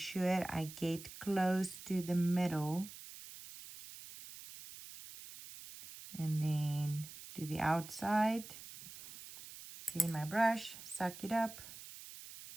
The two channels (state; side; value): noise; right; hiss, 14 dB below the sound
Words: I get close to the middle And then do the outside. Clean my brush, suck it up.